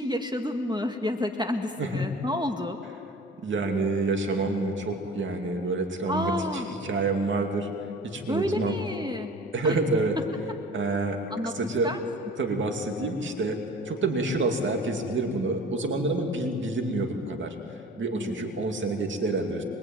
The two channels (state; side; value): normal; both; correlation 0.43